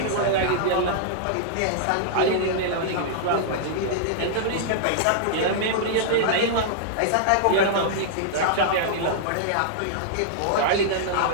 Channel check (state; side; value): different; both; correlation -0.01